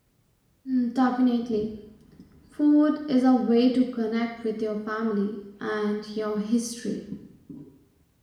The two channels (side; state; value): both; identical; correlation 1.00